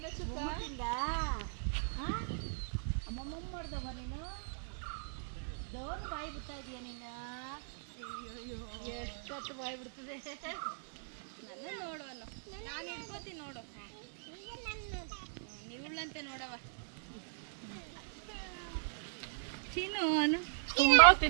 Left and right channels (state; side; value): silent; left; digital silence